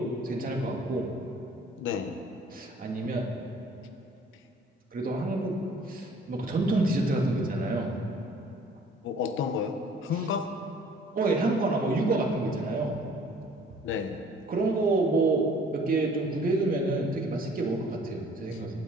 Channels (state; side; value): normal; both; correlation 0.54